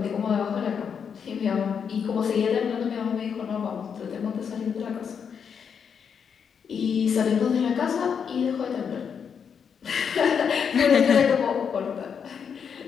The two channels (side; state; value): right; quieter; 7.0 dB